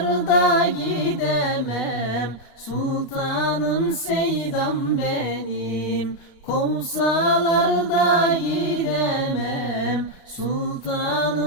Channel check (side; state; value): right; late; 36 ms